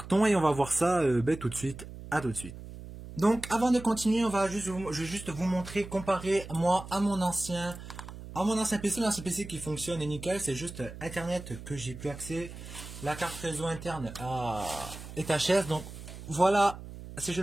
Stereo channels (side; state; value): right; noise; hum, 13 dB below the sound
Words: et on va voir ça tout de suite. À tout de suite. Donc avant de continuer, je vais juste vous montrer, comparer moi à mon ancien PC, l'ancien PC qui fonctionne est nickel, c'est juste Internet que j'ai plus accès. La carte réseau interne est HS. Donc voilà, si je